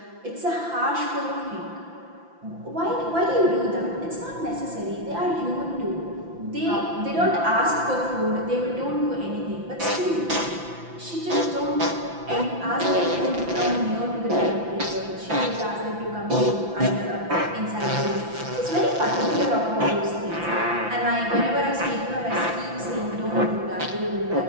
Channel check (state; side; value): late; left; 5.9 ms